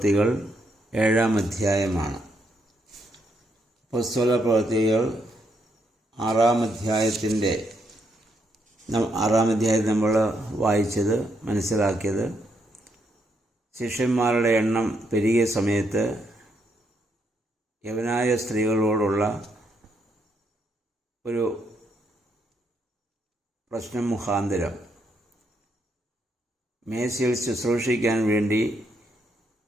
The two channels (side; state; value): both; normal; correlation 0.77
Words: 7-ാം അധ്യായമാണ്. അപ്പോസ്തല പ്രവൃത്തികൾ 6-ാം അധ്യായത്തിൽ നമ്മൾ വായിച്ചത് മനസ്സിലാക്കിയത് ശിഷ്യന്മാരുടെ എണ്ണം പെരുകിയ സമയത്ത് യവനായ സ്ത്രീകളോടുള്ള ഒരു പ്രശ്നം മുഖാന്തരം മേശയിൽ ശുശ്രൂഷിക്കാൻ വേണ്ടി